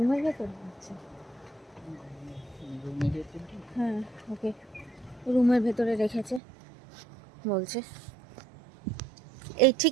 ভেতর? আচ্ছা হ্যাঁ, ওকে রুমের ভেতরে রেখেছে বলছে। এই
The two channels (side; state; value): left; drops out; at 6.4 s